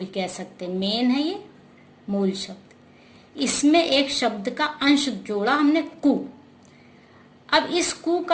कह सकते हैं, मेन है ये मूल शब्द। इसमें एक शब्द का अंश जोड़ा हमने कु। अब इस कु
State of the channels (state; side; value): identical; both; correlation 1.00